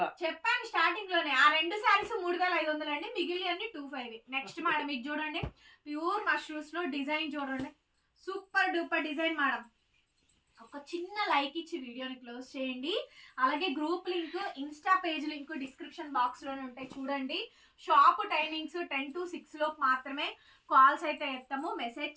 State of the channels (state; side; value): identical; both; correlation 1.00